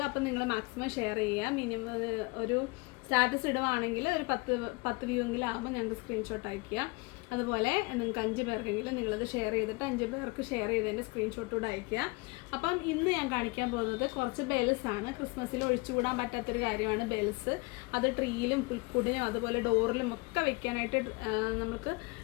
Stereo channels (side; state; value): right; quieter; 26.2 dB